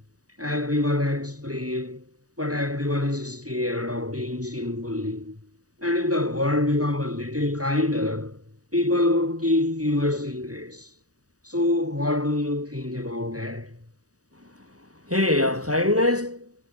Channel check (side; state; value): left; late; 0.66 ms